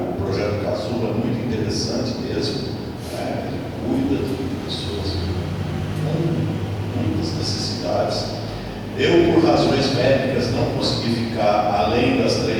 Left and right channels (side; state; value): both; identical; correlation 1.00